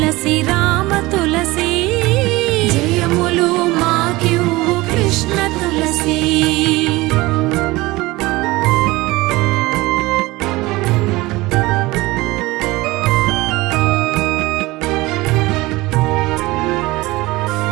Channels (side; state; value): left; quieter; 20.6 dB